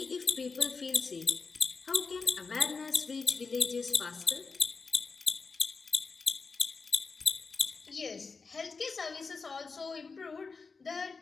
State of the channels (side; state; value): right; quieter; 4.6 dB